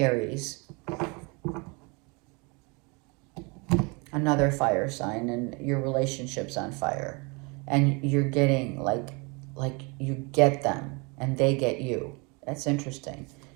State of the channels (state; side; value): quieter; left; 29.8 dB